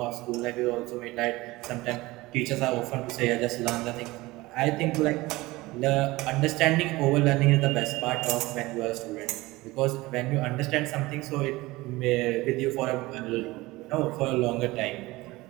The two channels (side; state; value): left; quieter; 20.3 dB